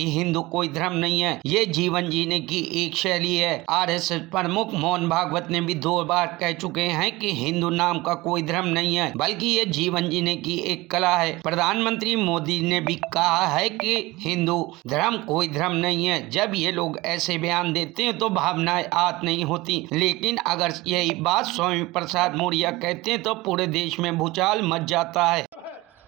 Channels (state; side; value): quieter; left; 20.5 dB